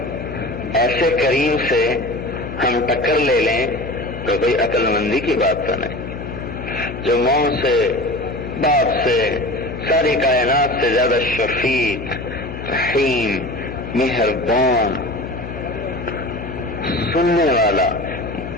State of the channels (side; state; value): left; noise; hum, 10 dB below the sound